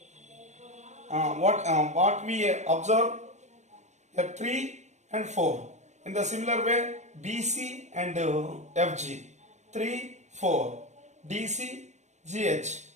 what we observe? Here 3 and 4. In the similar way, BC and FG, 3, 4, DC, GH,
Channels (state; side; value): late; left; 0.34 ms